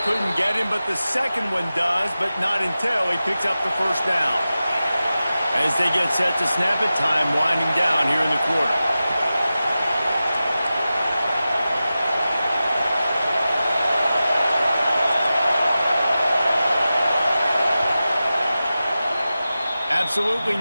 couldn't get him, but the second one does, but not until he picks up the first down. As they get set to snap it, time winding down here in the quarter. Absolutely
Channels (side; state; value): both; inverted; correlation -0.94